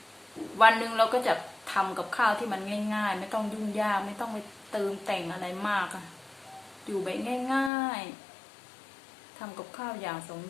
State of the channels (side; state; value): right; drops out; at 7.7 s